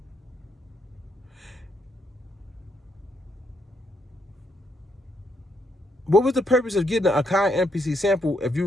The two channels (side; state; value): both; normal; correlation 0.76